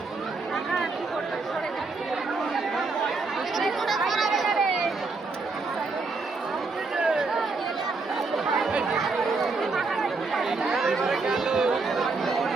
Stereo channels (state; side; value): quieter; left; 4.0 dB